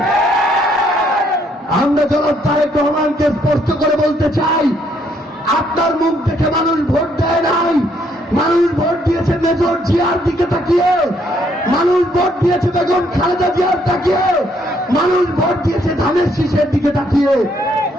আমরা জনাব তারেক রহমানকে স্পষ্ট করে বলতে চাই, আপনার মুখ দেখে মানুষ ভোট দেয় নাই। মানুষ ভোট দিয়েছে মেজর জিয়ার দিকে তাকিয়ে, মানুষ ভোট দিয়েছে বেগম খালেদা জিয়ার তাকিয়ে, মানুষ ভোট দিয়েছে ধানের শীষের দিকে তাকিয়ে।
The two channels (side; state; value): both; normal; correlation 0.69